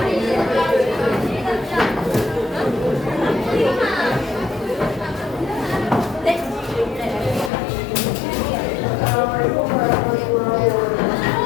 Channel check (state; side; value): drops out; right; at 7.5 s